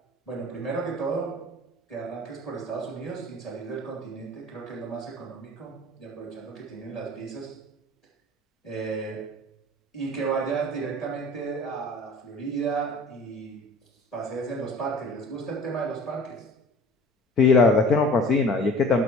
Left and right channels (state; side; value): normal; both; correlation 0.45